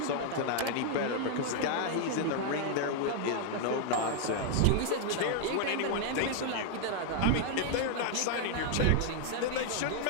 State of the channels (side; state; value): both; different; correlation 0.00